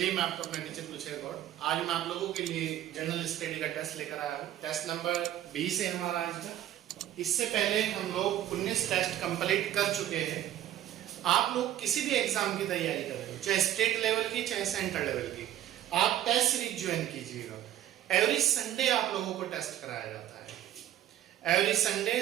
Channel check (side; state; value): left; quieter; 12.4 dB